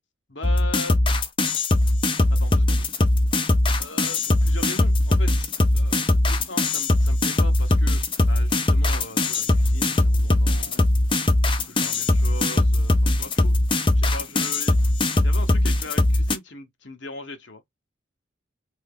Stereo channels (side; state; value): both; normal; correlation 0.83